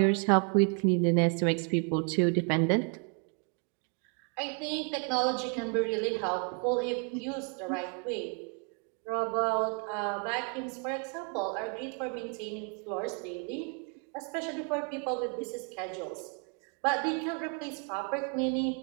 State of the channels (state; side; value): quieter; left; 39.2 dB